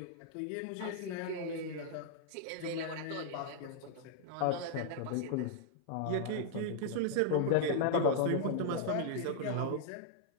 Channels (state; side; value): different; both; correlation 0.00